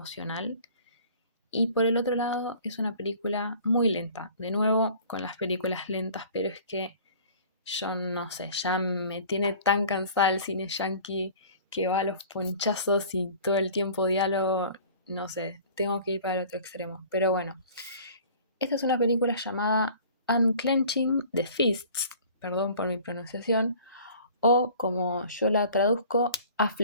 y por el otro lado es una película muy lenta. De nuevo, con las películas lentas, pero es que yo no sé, ya me tiene tan cansada el cine yankee que va a los ponchazos y todo el tiempo diálogo, no sé, tengo que ir para el otro extremo. Pero bueno, esta es una película llamada Unclenching the Fists, perdón por mi pronunciación, o como yo la traduzco,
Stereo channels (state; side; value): inverted; both; correlation -0.47